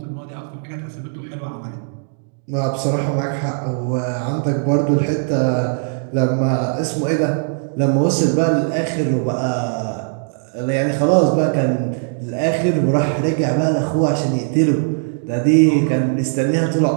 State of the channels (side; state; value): left; silent; digital silence